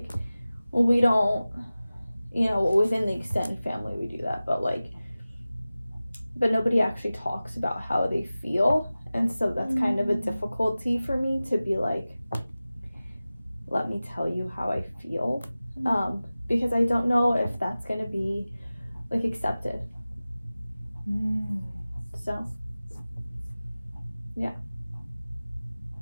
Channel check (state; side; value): inverted; both; correlation -0.96